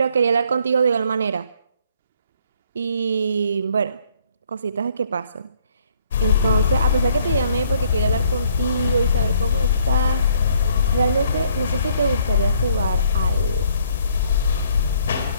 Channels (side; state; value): both; inverted; correlation -0.64